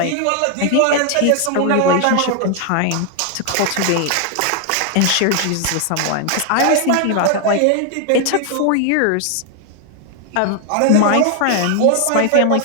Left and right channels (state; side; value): different; both; correlation 0.00